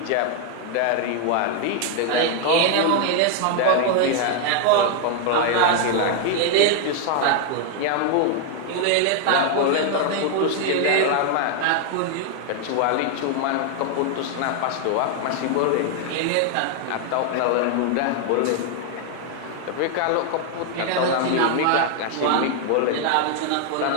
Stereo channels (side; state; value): both; different; correlation 0.00